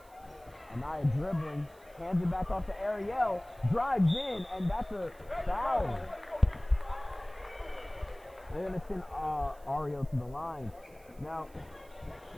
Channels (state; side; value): noise; right; hiss, 28 dB below the sound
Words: Anaya dribbling, hands it back off to Ariel, drives in, and that's a foul. They're going to send Ariel to the line. Now,